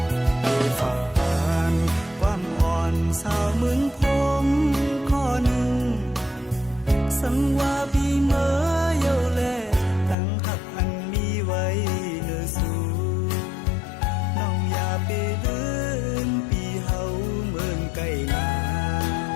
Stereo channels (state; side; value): drops out; right; at 10.2 s